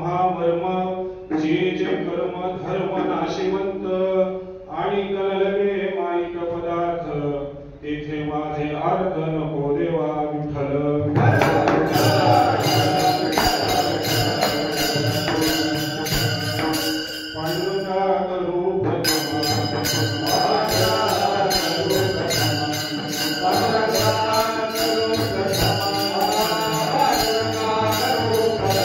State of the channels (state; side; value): identical; both; correlation 1.00